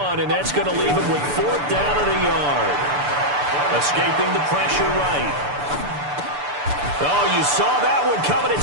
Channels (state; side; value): late; left; 6.9 ms